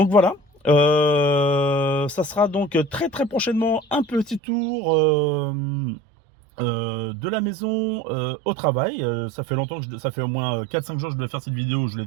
voilà. Ça sera donc très très prochainement un petit tour de la maison au travail. Ça fait longtemps que ça fait au moins 4-5 jours que je devais faire cette vidéo, je ne l'ai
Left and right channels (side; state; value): left; drops out; at 4.4 s